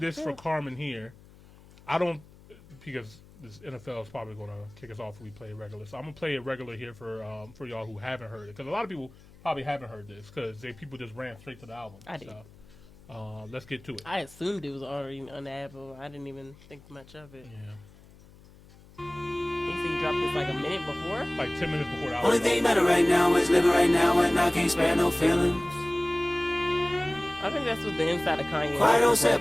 for Carmen here. I don't, because this NFL is probably gonna kick us off if we play it regular. So I'm gonna play it regular here for y'all who haven't heard it, because a lot of people probably haven't heard this because people just ran straight to the album. I did. So, let's get to it. I assumed it was already on the album. I didn't even think much of it. Yeah. He said he dropped this like a minute before. Like 10 minutes before the album. Only thing matter right now is living right now, and I can't spare no feelings. I think that's what the inside of Kanye. Quiet on set,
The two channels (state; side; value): noise; left; hum, 23 dB below the sound